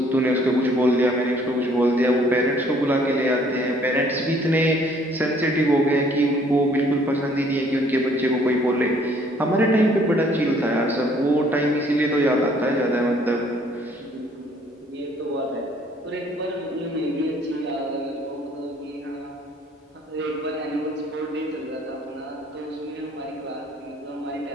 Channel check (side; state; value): both; normal; correlation 0.60